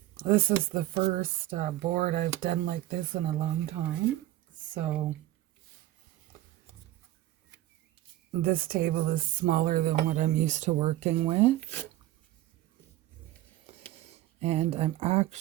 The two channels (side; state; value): left; quieter; 15.2 dB